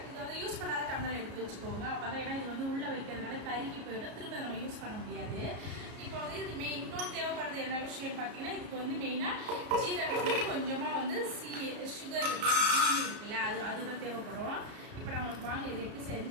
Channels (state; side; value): late; left; 33 ms